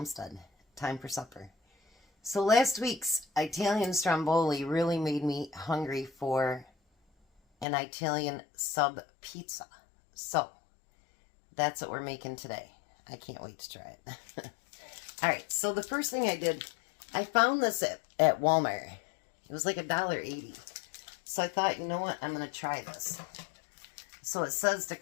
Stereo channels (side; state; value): right; drops out; at 7.7 s